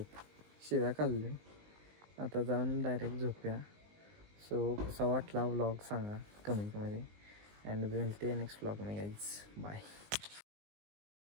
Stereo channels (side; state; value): left; late; 19 ms